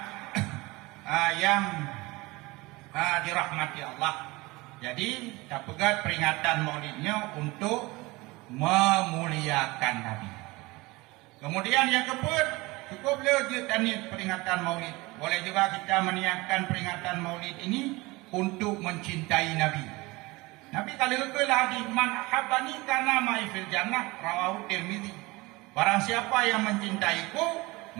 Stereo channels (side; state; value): left; quieter; 22.6 dB